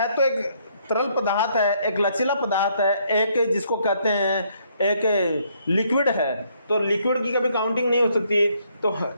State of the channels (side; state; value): both; inverted; correlation -0.70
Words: तो एक तरल पदार्थ है, एक लचीला पदार्थ है, एक जिसको कहते हैं एक लिक्विड है, तो लिक्विड की कभी काउंटिंग नहीं हो सकती। तो